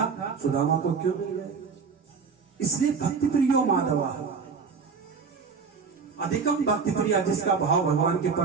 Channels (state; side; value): quieter; left; 5.4 dB